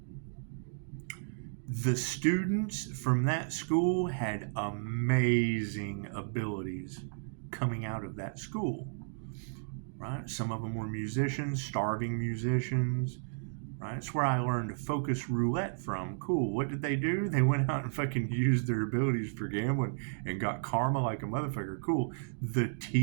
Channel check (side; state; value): left; silent; digital silence